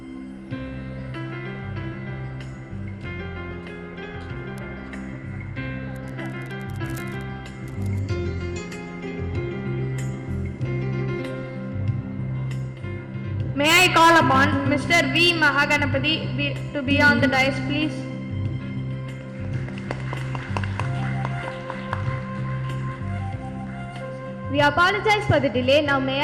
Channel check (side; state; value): both; identical; correlation 1.00